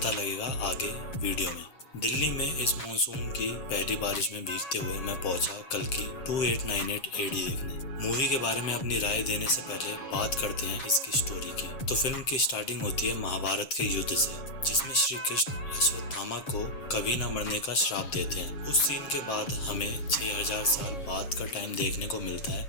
लगेगा आगे वीडियो में। दिल्ली में इस मानसून की पहली बारिश में भीगते हुए मैं पहुंचा कल की 2898 एडी देखने। मूवी के बारे में अपनी राय देने से पहले बात करते हैं इसकी स्टोरी की। तो फिल्म की स्टार्टिंग होती है महाभारत के युद्ध से, जिसमें श्री कृष्ण अश्वत्थामा को कभी न मरने का श्राप देते हैं। उस सीन के बाद हमें 6000 साल बाद का टाइम देखने को मिलता है।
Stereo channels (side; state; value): right; late; 7.6 ms